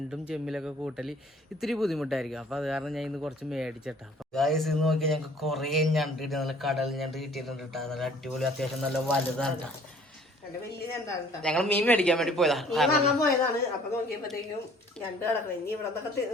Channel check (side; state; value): both; normal; correlation 0.55